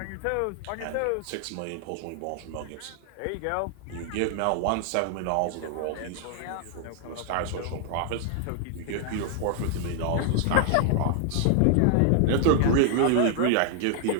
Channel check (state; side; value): different; both; correlation 0.00